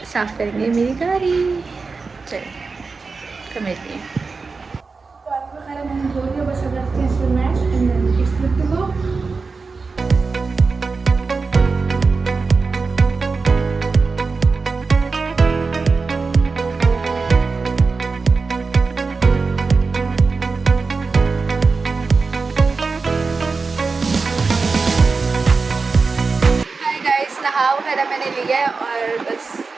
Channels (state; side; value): quieter; left; 4.4 dB